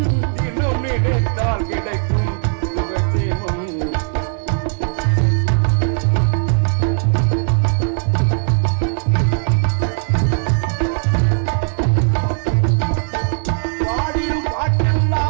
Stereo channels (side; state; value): left; silent; digital silence